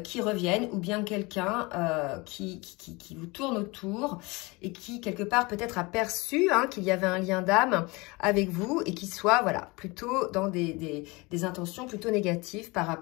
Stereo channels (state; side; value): quieter; right; 25.1 dB